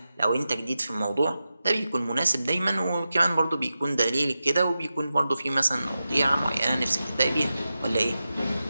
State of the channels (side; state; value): both; inverted; correlation -0.92